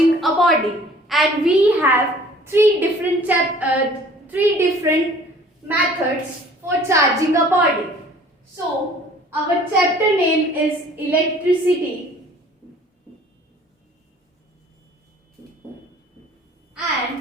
a body, and we have three different methods for charging a body. So, our chapter name is electricity,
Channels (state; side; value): normal; both; correlation 0.52